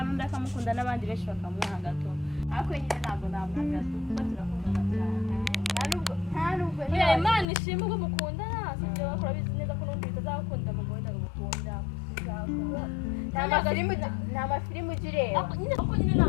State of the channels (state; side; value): drops out; right; at 7.5 s